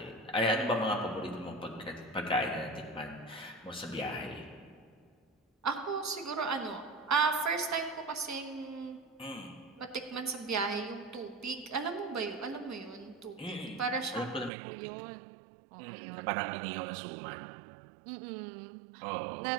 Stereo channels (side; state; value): left; drops out; at 14.5 s